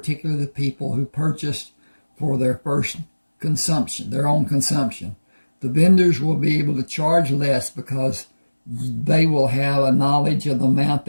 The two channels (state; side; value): inverted; both; correlation -1.00